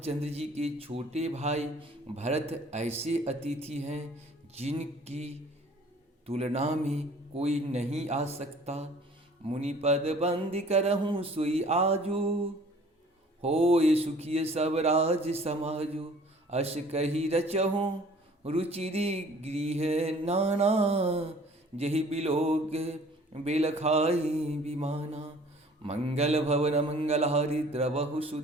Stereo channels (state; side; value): normal; both; correlation 0.52